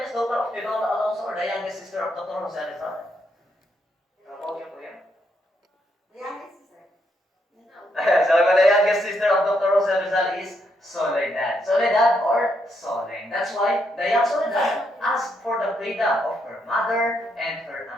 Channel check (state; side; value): normal; both; correlation 0.77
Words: daughter of Chidora Alonso or the youngest sister of Dr. Jose Rizal? Kapag yun po yan? The youngest sister. Sabi ko, the youngest sister of Dr. Jose Rizal is Soledad. Soledad or Soleng. That's why the young Soledad asked for the freedom of her mother and her